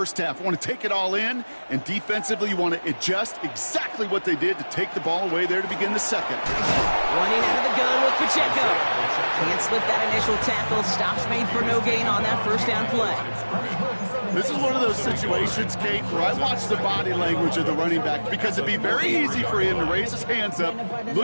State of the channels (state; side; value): inverted; both; correlation -1.00